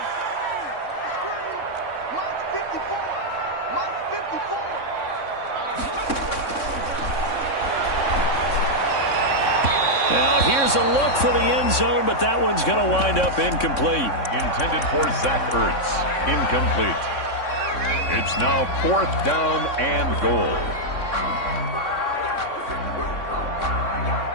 Now here's a look for the end zone, but that one's going to wind up incomplete. Intended for Zach Ertz. Incomplete. It's now 4th down and goal.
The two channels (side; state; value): right; late; 3.6 ms